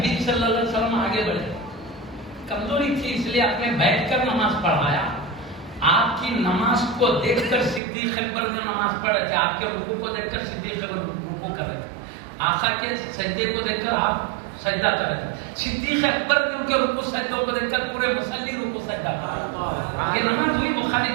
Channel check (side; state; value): left; drops out; at 7.8 s